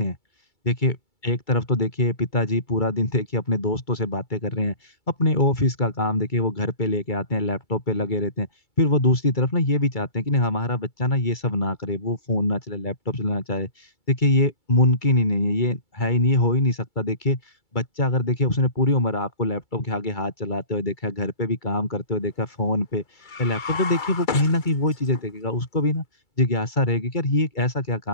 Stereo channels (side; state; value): right; late; 2.3 ms